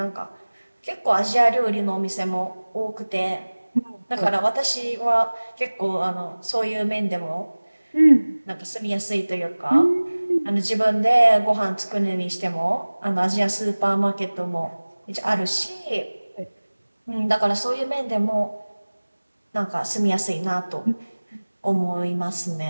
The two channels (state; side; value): inverted; both; correlation -1.00